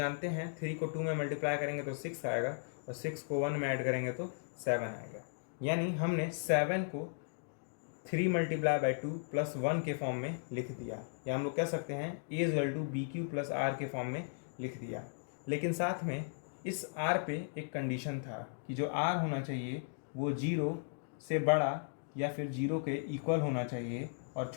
हैं 3 को 2 में मल्टीप्लाई करेंगे तो 6 आएगा और 6 को 1 में ऐड करेंगे तो 7 आएगा। यानी हमने 7 को 3 मल्टीप्लाई बाई 2 प्लस 1 के फॉर्म में लिख दिया, या हम लोग कह सकते हैं A is equal to B Q plus R के फॉर्म में लिख दिया। लेकिन साथ में इस आर पे एक कंडीशन था कि जो आर होना चाहिए वो 0 से बड़ा या फिर 0 के इक्वल होना चाहिए और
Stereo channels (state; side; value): silent; right; digital silence